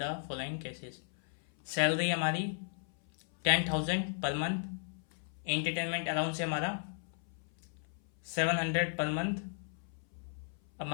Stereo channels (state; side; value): silent; right; 54 dB below the other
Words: following cases. Salary हमारी 10,000 पर मंथ, एंटरटेनमेंट अलाउंस है हमारा 700 per month,